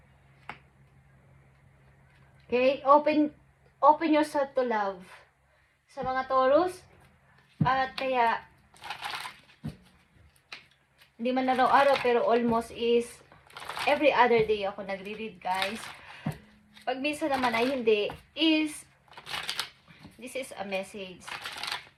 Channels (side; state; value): both; identical; correlation 1.00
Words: Okay? Open yourself to love. Sa mga Taurus. At kaya, hindi man araw-araw, pero almost is every other day ako nagre-read, guys. Pag minsan naman ay hindi, this is a message.